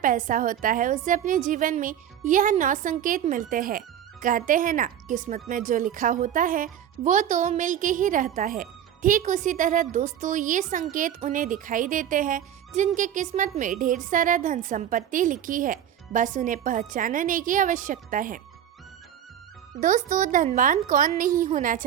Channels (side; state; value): left; quieter; 10.2 dB